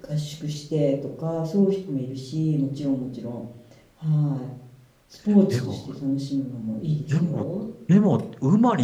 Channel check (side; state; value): both; identical; correlation 1.00